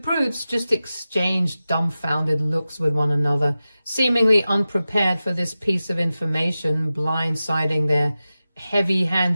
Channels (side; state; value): both; inverted; correlation -0.94